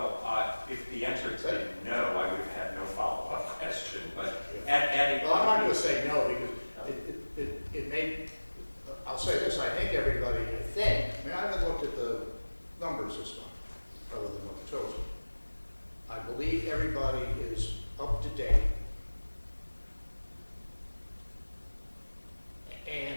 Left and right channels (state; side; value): inverted; both; correlation -1.00